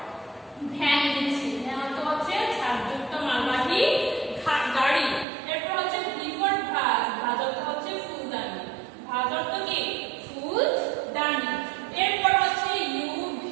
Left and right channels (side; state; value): left; drops out; at 5.2 s